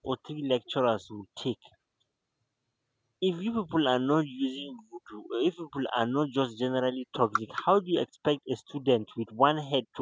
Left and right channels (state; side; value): identical; both; correlation 1.00